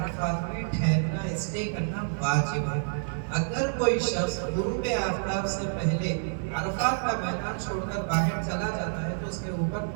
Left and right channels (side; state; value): left; silent; digital silence